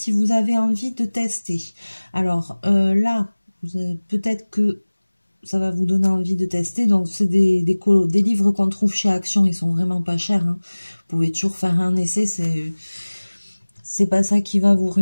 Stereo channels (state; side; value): inverted; both; correlation -1.00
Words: vous avez envie de tester. Alors là, Peut-être que ça va vous donner envie de tester. Donc, c'est des livres qu'on trouve chez Action. Ils sont vraiment pas chers, hein. Vous pouvez toujours faire un essai. C'est pas ça qui va vous